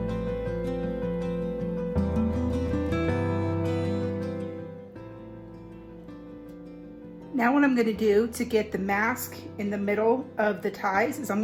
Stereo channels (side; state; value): both; identical; correlation 1.00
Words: Now what I'm gonna do to get the mask in the middle of the ties is I'm